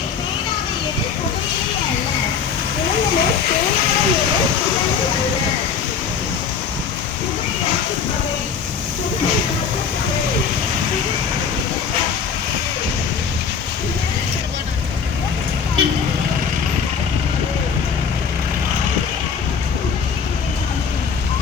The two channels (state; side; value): quieter; right; 6.5 dB